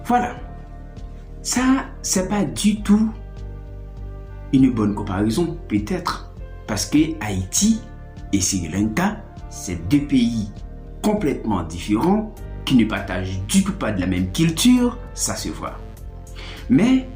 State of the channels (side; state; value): both; identical; correlation 1.00